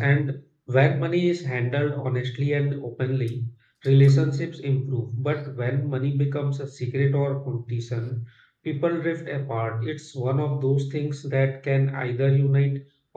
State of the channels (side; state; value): both; identical; correlation 1.00